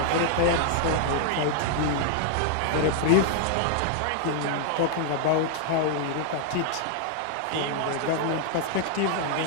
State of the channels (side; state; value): both; different; correlation 0.00